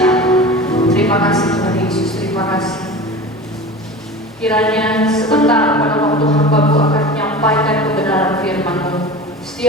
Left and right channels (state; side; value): normal; both; correlation 0.34